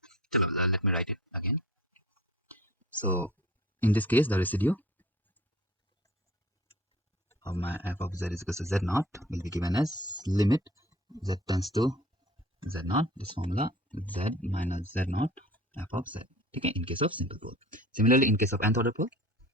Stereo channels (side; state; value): both; normal; correlation 0.46